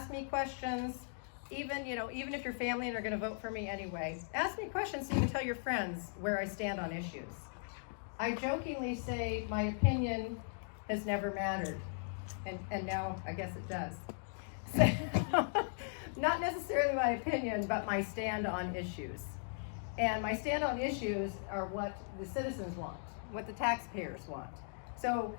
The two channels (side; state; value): right; silent; digital silence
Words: me questions. Even if your family and are going to vote for me anyway, ask me questions so you can tell your friends where I stand on issues. I jokingly say my opinion has never mattered, and now I guess it does. So, not necessarily my opinion, but my stand on issues. And my stand on issues are what the citizens want, what the taxpayers want. So